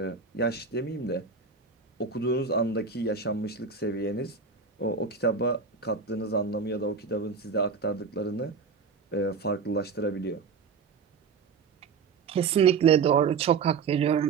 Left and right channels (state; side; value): quieter; left; 5.4 dB